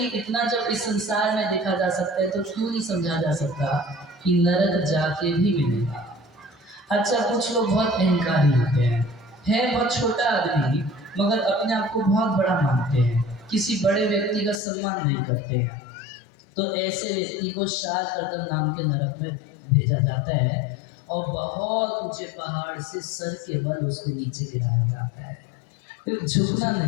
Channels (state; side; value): drops out; right; at 14.6 s